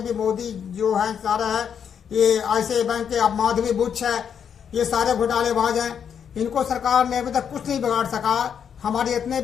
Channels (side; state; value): right; quieter; 7.8 dB